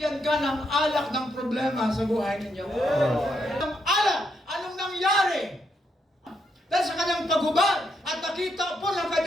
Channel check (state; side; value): normal; both; correlation 0.78